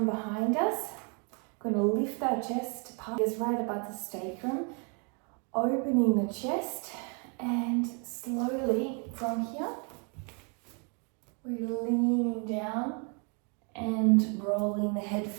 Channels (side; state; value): left; quieter; 36.6 dB